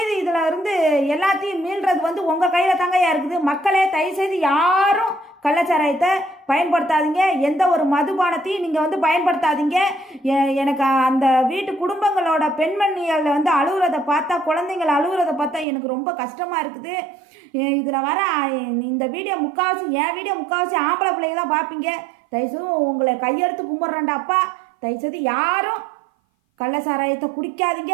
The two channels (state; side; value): drops out; left; at 15.7 s